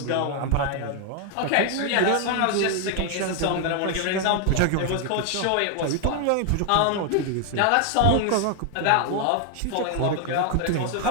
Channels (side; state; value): both; different; correlation 0.00